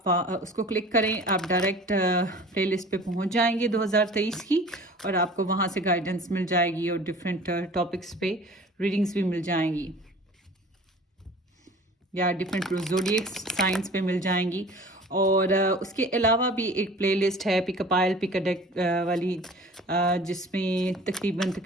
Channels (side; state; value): both; normal; correlation 0.44